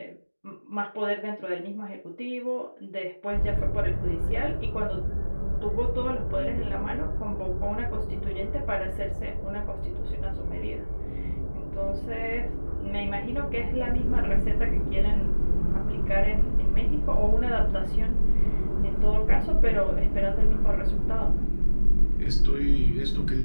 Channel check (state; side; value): inverted; both; correlation -1.00